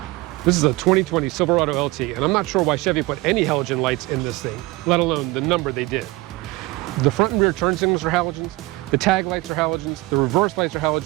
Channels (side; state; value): left; quieter; 21.7 dB